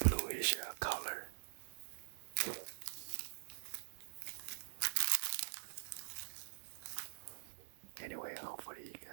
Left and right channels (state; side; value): silent; left; digital silence